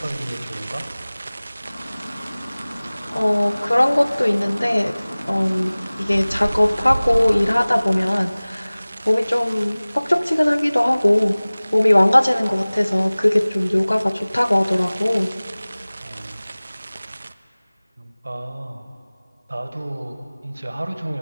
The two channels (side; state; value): both; inverted; correlation -0.99